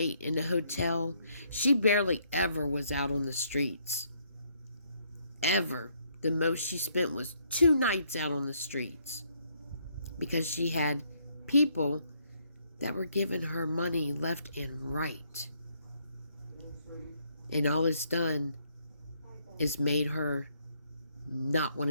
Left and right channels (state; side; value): inverted; both; correlation -0.71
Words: in the hotel, she barely ever was out on the streets. Ever. The most she spent was 2 nights out on the streets. Because she had people that were giving her money left and right. And all it's done is made her not want